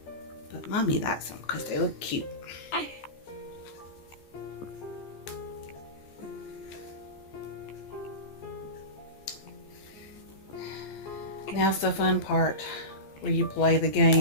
Mommy likes them because they look cute. Now's the fun part where you play the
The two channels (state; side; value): late; right; 14 ms